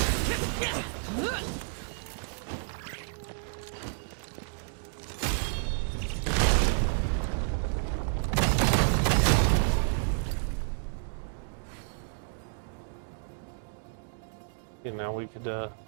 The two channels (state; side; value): silent; left; digital silence